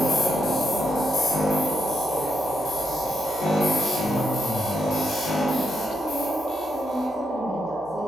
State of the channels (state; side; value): normal; both; correlation 0.80